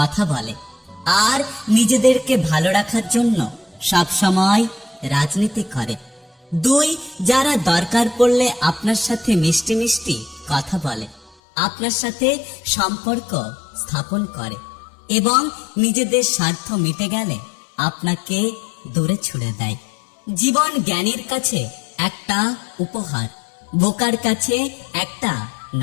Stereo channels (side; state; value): right; drops out; at 11.4 s